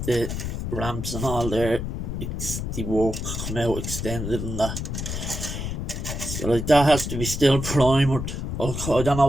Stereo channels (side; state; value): left; noise; rumble, 4 dB below the sound